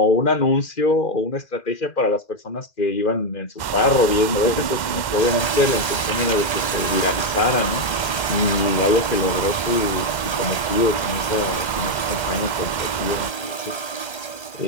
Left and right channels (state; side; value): late; right; 2.1 ms